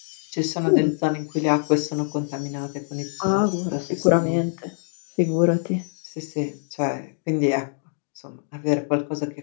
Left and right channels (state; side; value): silent; right; digital silence